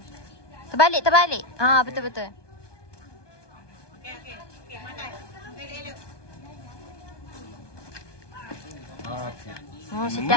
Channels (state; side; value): late; right; 1.2 ms